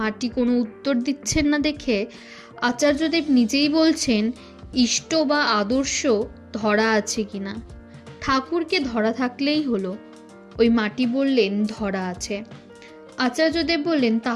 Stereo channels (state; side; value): identical; both; correlation 1.00